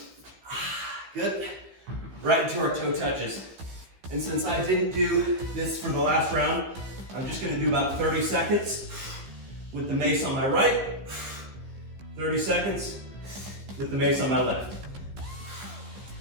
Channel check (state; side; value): late; left; 15 ms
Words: Good. Right into our toe touches. And since I didn't do this for the last round, I'm just gonna do about 30 seconds with the mace on my right, 30 seconds with the mace on my left.